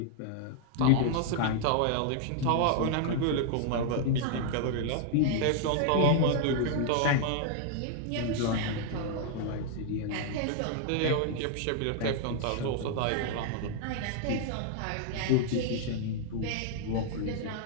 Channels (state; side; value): different; both; correlation 0.00